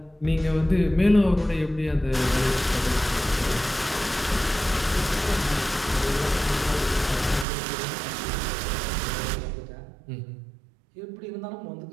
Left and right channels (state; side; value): drops out; left; at 7.5 s